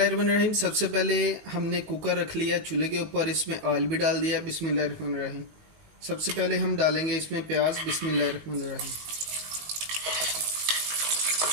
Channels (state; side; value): late; left; 19 ms